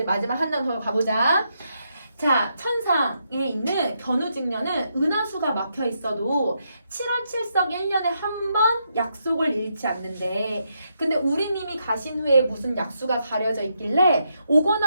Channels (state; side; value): inverted; both; correlation -0.80